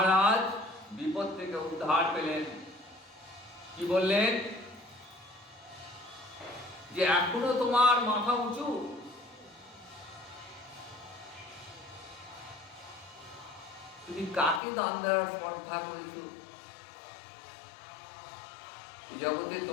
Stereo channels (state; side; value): drops out; right; at 14.6 s